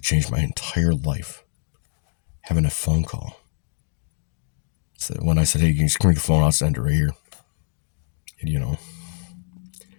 my entire life having a phone call. So when I said, hey, can you screw the phone, I'll send it right here. And, you know,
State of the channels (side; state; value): right; silent; 62 dB below the other